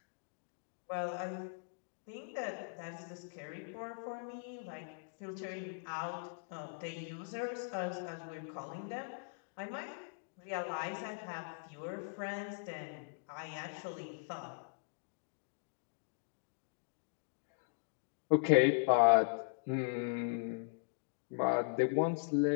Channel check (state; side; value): silent; right; digital silence